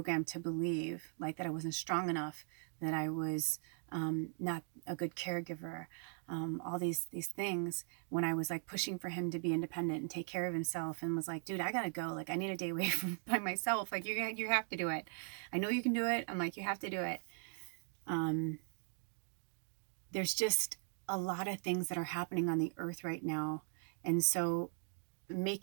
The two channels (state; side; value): silent; left; 51 dB below the other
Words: to believe, like that I wasn't strong enough, that I was not a good caregiver, all these things, when I was like pushing for him to be independent and take care of himself, and was like, dude, I gotta go. Like, I need a day away from by myself. Like, you have to do it. I know you can do it. I'm like, you have to do it. There's just a lot of things that are happening on the earth right now. And so